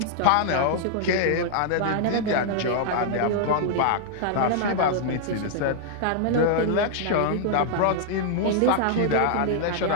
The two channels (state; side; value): different; both; correlation -0.01